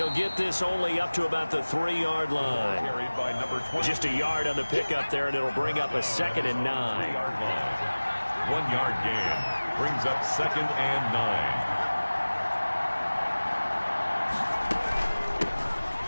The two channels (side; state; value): both; inverted; correlation -1.00